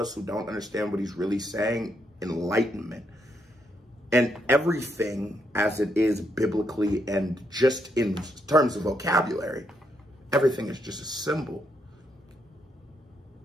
who don't understand what he's really saying, enlightenment. And everything as it is biblically and just in terms of vocabulary, everything is just a symbol.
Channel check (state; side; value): normal; both; correlation 0.77